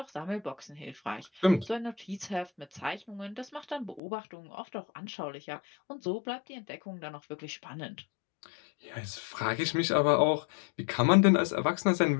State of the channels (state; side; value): drops out; right; at 4.0 s